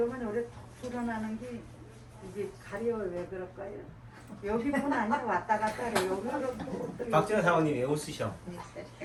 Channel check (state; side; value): identical; both; correlation 1.00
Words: 오래 톡 불어나는 게 이게 가려 왜 그럴까요? 여기뿐 아니라 왔다 갔다 해. 여기로 박진아 사모님 왜 웃으셔?